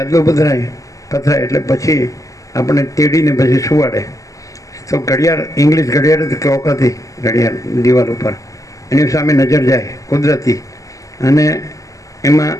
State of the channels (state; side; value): late; right; 0.16 ms